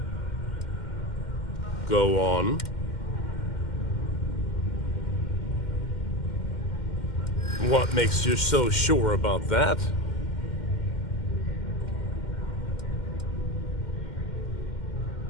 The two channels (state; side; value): late; right; 2.1 ms